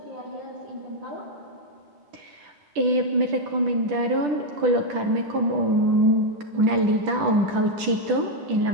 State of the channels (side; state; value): left; late; 10 ms